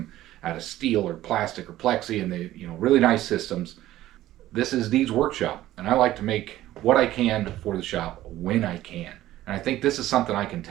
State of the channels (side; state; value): left; quieter; 14.6 dB